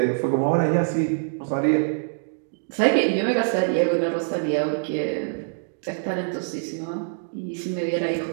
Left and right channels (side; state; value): left; silent; digital silence